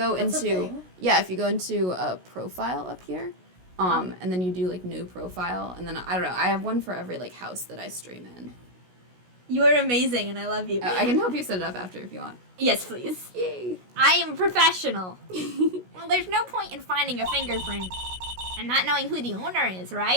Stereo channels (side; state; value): left; late; 16 ms